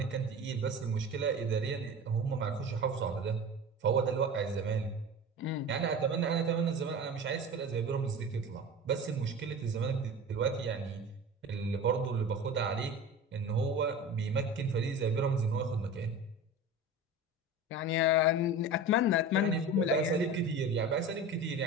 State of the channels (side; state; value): both; normal; correlation 0.33